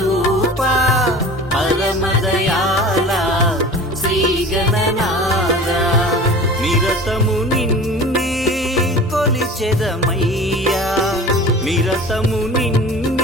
పరమదయాల శ్రీ గణనాథ నిరతము నిన్నే కొలిచెదమయ్యా నిరతము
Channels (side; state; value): both; normal; correlation 0.39